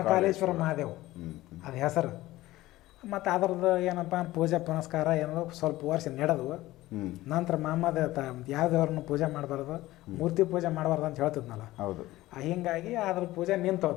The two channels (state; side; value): quieter; right; 17.1 dB